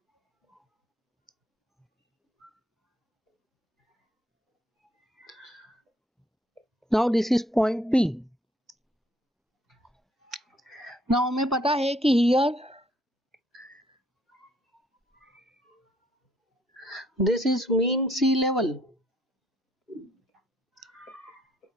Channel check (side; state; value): both; normal; correlation 0.66